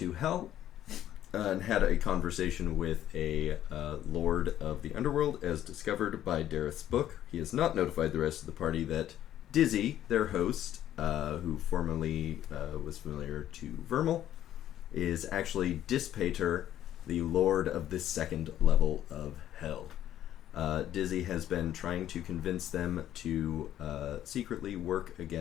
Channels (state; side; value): quieter; right; 11.8 dB